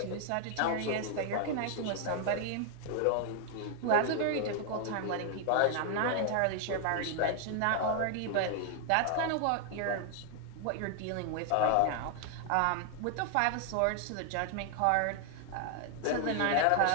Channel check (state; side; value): different; both; correlation 0.00